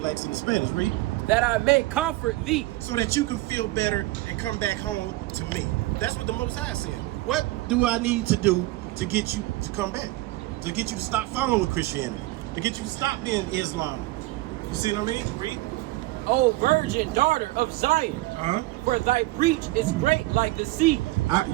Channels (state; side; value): quieter; left; 19.3 dB